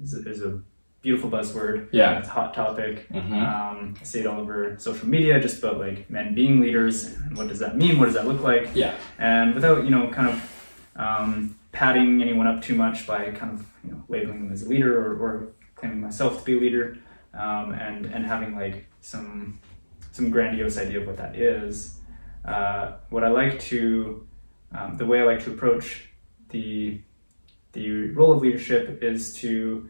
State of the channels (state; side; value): inverted; both; correlation -1.00